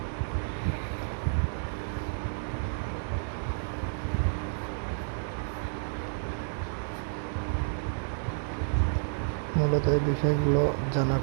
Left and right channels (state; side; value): silent; left; 58 dB below the other